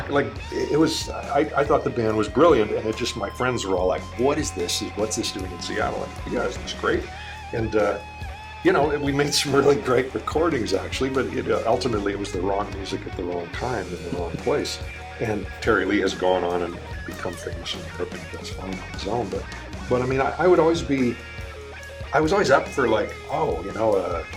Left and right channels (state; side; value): identical; both; correlation 1.00